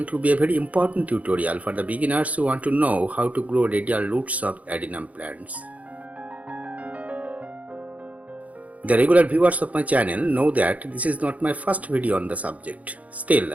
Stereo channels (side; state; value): left; late; 0.069 ms